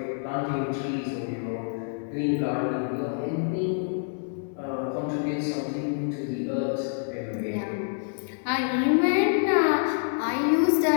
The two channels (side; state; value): right; silent; digital silence